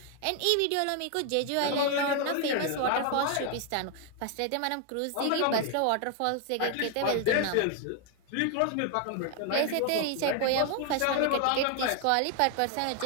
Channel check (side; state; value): both; different; correlation 0.00